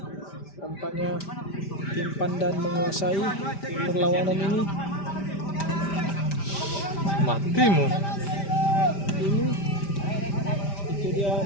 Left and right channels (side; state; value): right; late; 5.1 ms